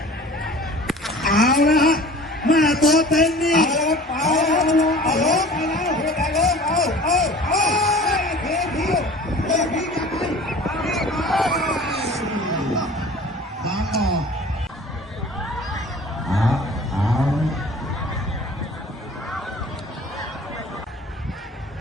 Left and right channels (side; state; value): both; normal; correlation 0.44